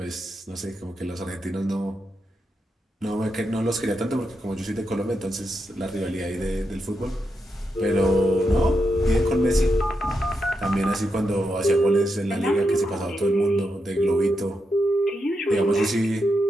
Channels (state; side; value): normal; both; correlation 0.85